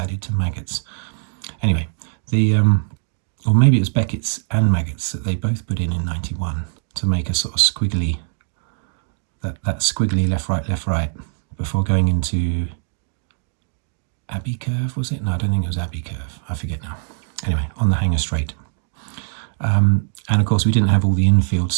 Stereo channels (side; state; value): left; silent; digital silence